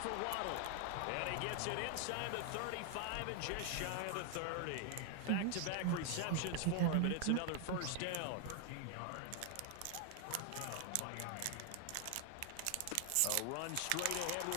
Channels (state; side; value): different; both; correlation 0.00